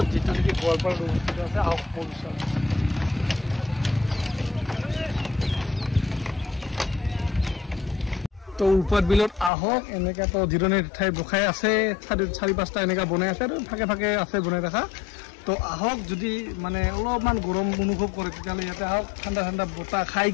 যেটো কি গোৱালপাৰা অৱস্থিত আছে আহক পলুচন তো উৰপাট বিলত আহক এনেকা তো জিৰণিৰ ঠাই বখাই আছে চাৰি পাঁচটা এনেকা বনাই আছে আৰু ফাকে ফাকে আছে বনাই ৰাখা তো আহক যদি মানে অলপমান গৰম অনুভৱ কৰে তেতিয়ালে ইয়াতে আহক ঠাণ্ডা ঠাণ্ডা বতাহ খাই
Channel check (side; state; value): right; drops out; at 9.5 s